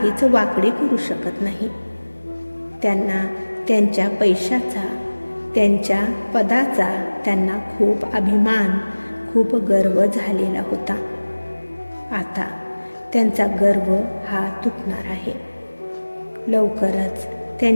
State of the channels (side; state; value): both; inverted; correlation -1.00